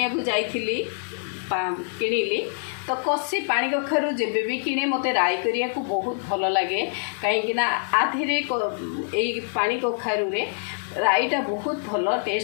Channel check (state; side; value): silent; right; digital silence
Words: को जाइथिली किनिली तो कसी पानी कखारु जेबे भी किने मते राई करिया को बहुत भलो लागे। काहेकि ना आधेरे एई पानी कखारु रे राईटा बहुत भलो